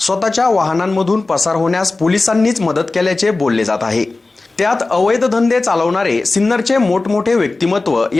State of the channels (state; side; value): quieter; right; 3.4 dB